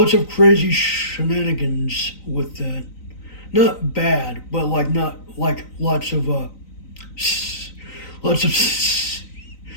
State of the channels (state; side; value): late; right; 3.9 ms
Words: of crazy shenanigans with that. Not bad, but like not like lots of lots of